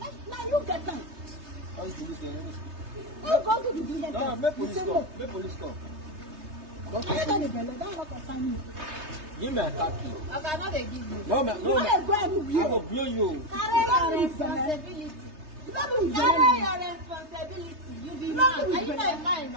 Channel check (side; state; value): left; late; 3.3 ms